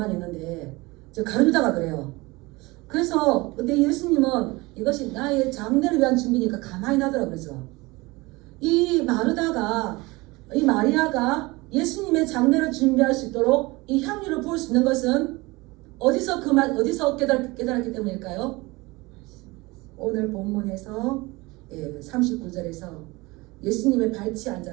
있는데 저 가룟 유다가 그래요. 그래서 근데 예수님은 이것이 나의 장례를 위한 준비니까 가만히 놔두라 그러죠. 이 마리아가 예수님의 장례를 준비할 수 있도록 이 향유를 부을 수 있는 것은 어디서 깨달았기 때문일까요? 오늘 본문에서 39절에서 예수님의 발치에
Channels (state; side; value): quieter; left; 22.8 dB